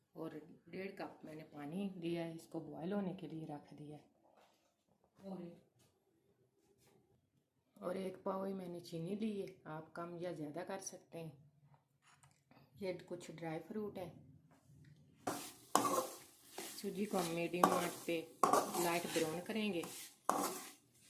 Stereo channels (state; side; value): identical; both; correlation 1.00